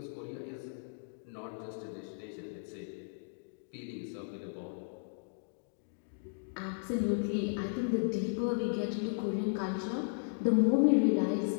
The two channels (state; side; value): silent; right; digital silence